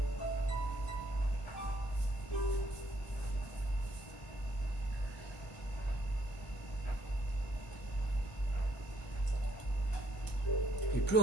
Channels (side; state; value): both; normal; correlation 0.69